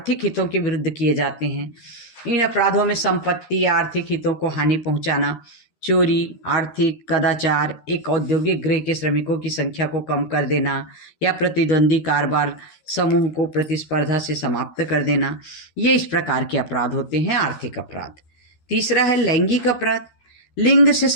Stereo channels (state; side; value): late; right; 13 ms